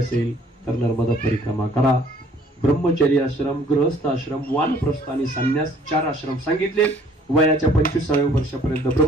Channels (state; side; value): normal; both; correlation 0.58